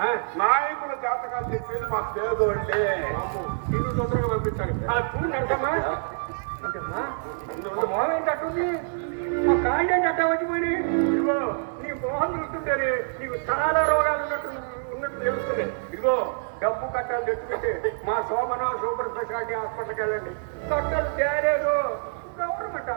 నాయకుల జాతకాలు చెప్పేది మా పేదోళ్ళే. ఇల్లు తొందరగా పంపించాలి. చూడంటమ్మా మొహం ఏంటట్టుంది, మా కాళ్ళు ఏంటి అట్ట వచ్చిపోయి. ఇదిగో నీ మొహం చూస్తుంటే నీకు చాలా రోగాలు ఉన్నట్టు తెలుస్తుంది. ఇదిగో డబ్బు కట్టాలు తెచ్చుకుంటే మా సోమన సూపర్ స్పెషాలిటీ హాస్పిటల్కి వెళ్ళండి. కట్టలు తేలేదు, గవర్నమెంట్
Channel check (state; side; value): silent; left; digital silence